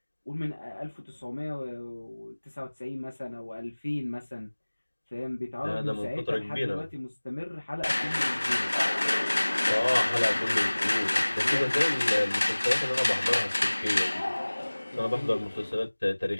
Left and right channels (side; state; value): both; inverted; correlation -1.00